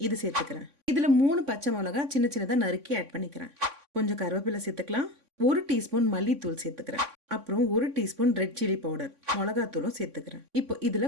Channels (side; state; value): left; late; 3.6 ms